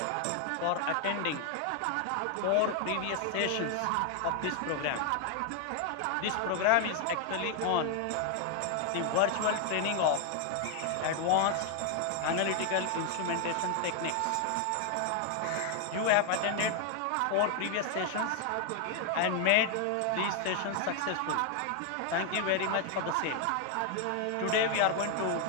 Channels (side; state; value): both; different; correlation 0.00